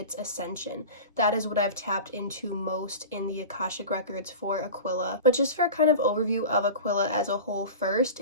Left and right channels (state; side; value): inverted; both; correlation -0.33